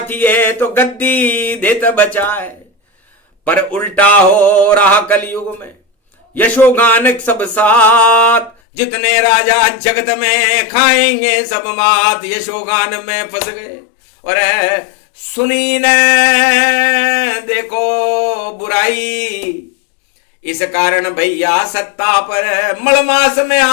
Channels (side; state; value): right; drops out; at 8.6 s